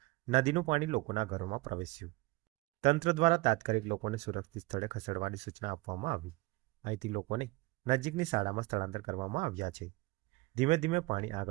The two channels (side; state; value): left; quieter; 22.5 dB